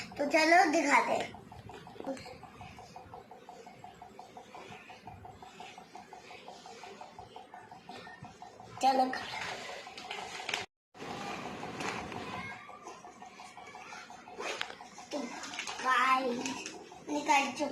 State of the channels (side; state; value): both; identical; correlation 1.00